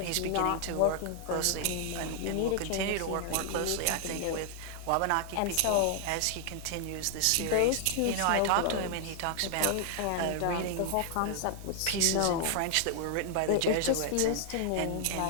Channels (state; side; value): different; both; correlation 0.00